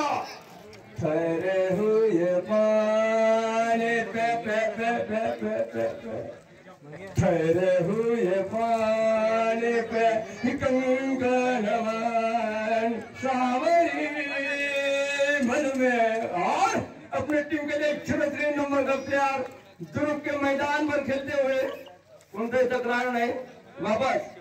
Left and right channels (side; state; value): both; identical; correlation 1.00